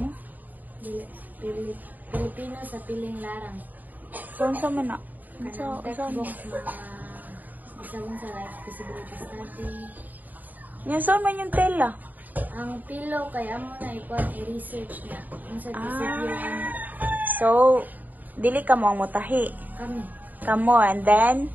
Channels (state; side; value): late; left; 0.083 ms